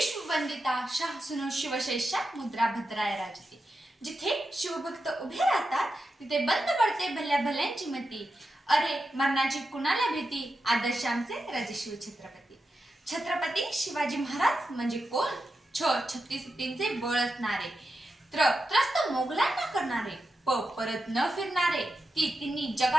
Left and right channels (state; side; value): normal; both; correlation 0.89